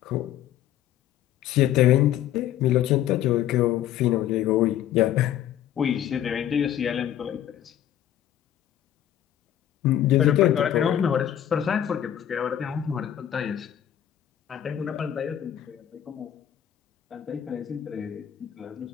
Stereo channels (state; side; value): quieter; right; 11.1 dB